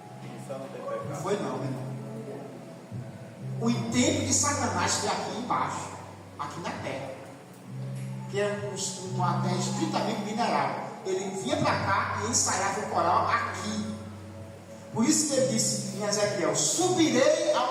Não foi não, meu irmão. O intento de Satanás foi aqui embaixo, aqui na terra, que é uma terra estritamente mineral. ele vinha para cá e ensaiava o coral aqui. Por isso que ele disse em Ezequiel: subirei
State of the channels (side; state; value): both; identical; correlation 1.00